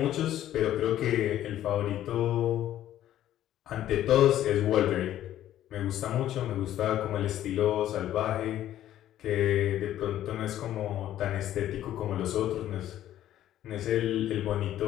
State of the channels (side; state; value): right; quieter; 12.4 dB